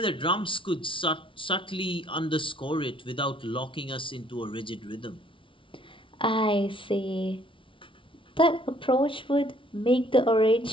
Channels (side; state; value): right; late; 0.25 ms